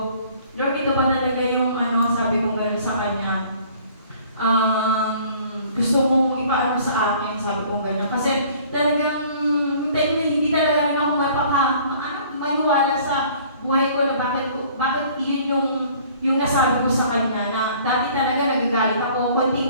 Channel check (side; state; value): both; inverted; correlation -0.54